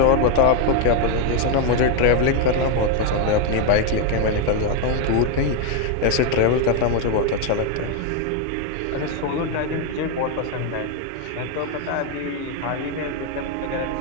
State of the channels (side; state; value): both; different; correlation 0.01